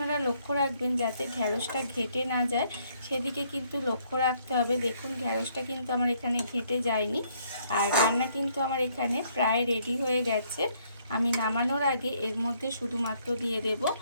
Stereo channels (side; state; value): both; inverted; correlation -0.68